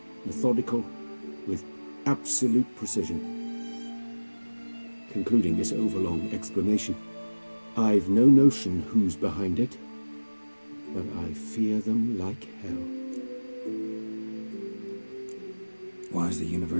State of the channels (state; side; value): inverted; both; correlation -1.00